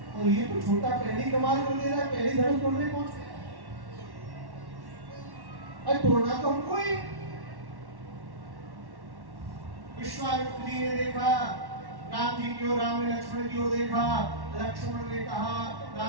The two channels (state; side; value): late; left; 1.1 ms